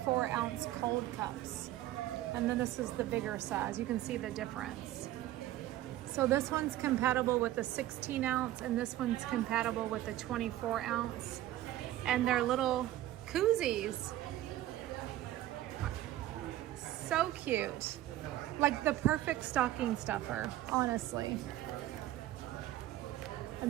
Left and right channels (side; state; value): left; quieter; 14.3 dB